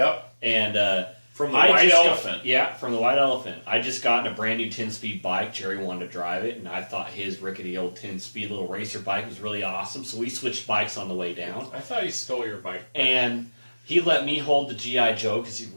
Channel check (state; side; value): inverted; both; correlation -1.00